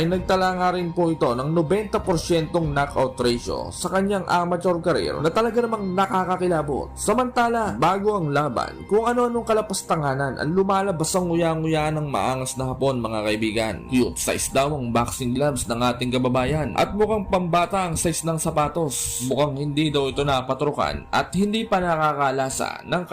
nagtala nga rin po ito ng 90% knockout ratio sa kanyang amateur career na talaga namang nakakakilabot. Samantala bago ang laban, kung ano-anong kalapastanganan ang lumalabas ang nguya-nguya yan ng maangas na Hapon mga kaibigan. Cute size daw ang boxing gloves ng ating kababayan at mukhang pambata ang size ng sapatos. Mukhang hindi daw ito napatrukan at hindi pa nakakalasa ng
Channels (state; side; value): identical; both; correlation 1.00